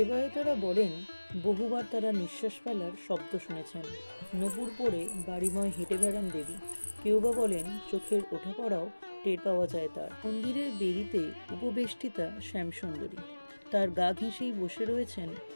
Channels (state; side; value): inverted; both; correlation -1.00